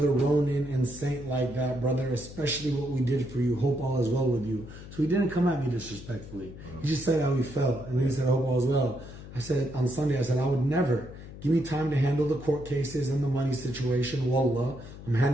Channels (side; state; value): left; noise; hum, 14 dB below the sound